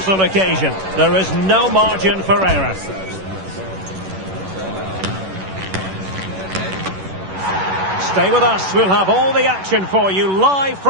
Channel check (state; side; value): late; left; 11 ms